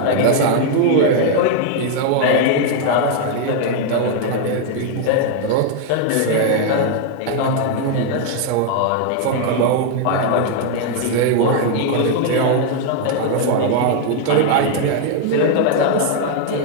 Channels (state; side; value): different; both; correlation 0.00